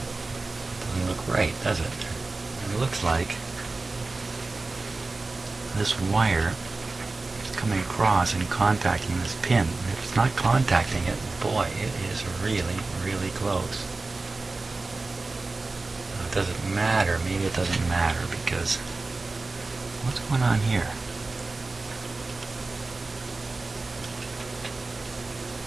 Right, does it? And it looks like this wire is coming across and contacting this pin. And if it's not contacting it, boy, it is really, really close. Now, does it matter? Maybe it doesn't matter because what's going on here?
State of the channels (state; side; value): quieter; left; 3.5 dB